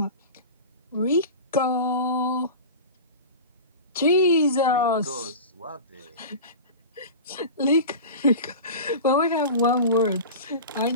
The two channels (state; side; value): inverted; both; correlation -0.31